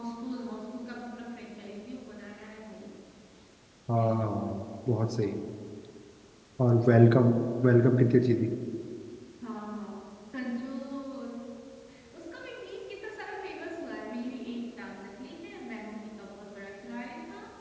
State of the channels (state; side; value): identical; both; correlation 1.00